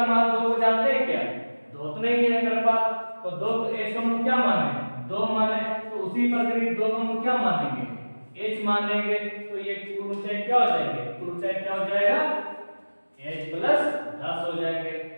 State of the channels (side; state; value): both; inverted; correlation -1.00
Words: मान 2 को जानते हैं क्या, 2 तो नहीं है मेरे पास, तो 2 एज को हम क्या माने 2 माने, तो उसी प्रकार 2 को हम क्या मानेंगे एच मानेंगे, तो ये कुल ऊंचाई क्या हो जाएंगे, कुल ऊंचाई क्या हो जाएगा h प्लस 10 हो जाएंगे,